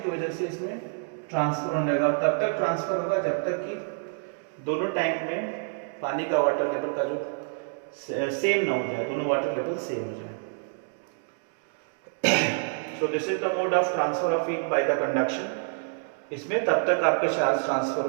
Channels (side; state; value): left; silent; 60 dB below the other